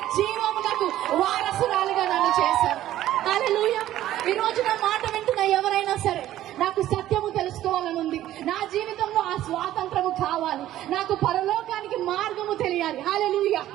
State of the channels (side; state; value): left; quieter; 13.4 dB